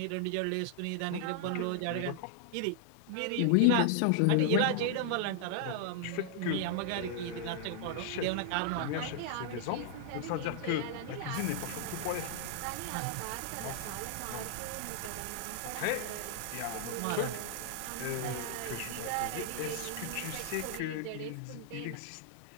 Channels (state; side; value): different; both; correlation -0.01